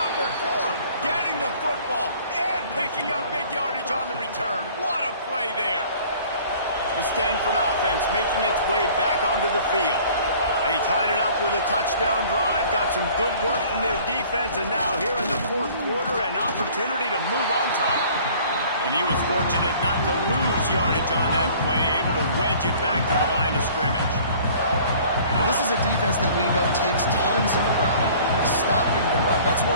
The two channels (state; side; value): inverted; both; correlation -0.51